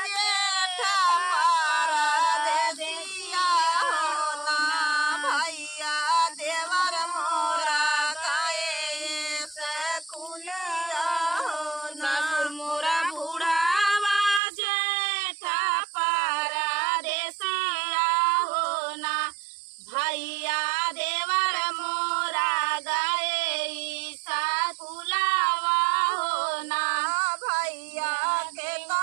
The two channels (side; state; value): left; drops out; at 14.4 s